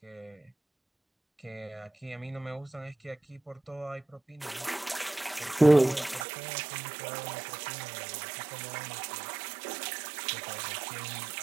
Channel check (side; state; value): left; drops out; at 6.2 s